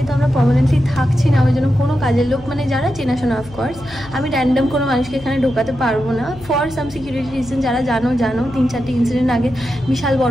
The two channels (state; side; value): noise; left; hum, 19 dB below the sound